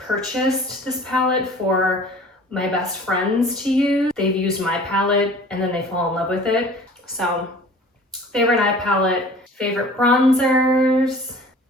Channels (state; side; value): normal; both; correlation 0.46